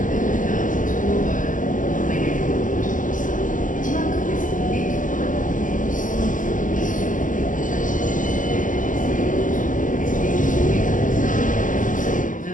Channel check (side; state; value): right; late; 0.38 ms